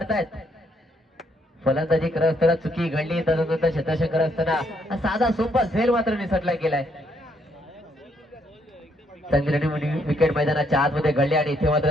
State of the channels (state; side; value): normal; both; correlation 0.72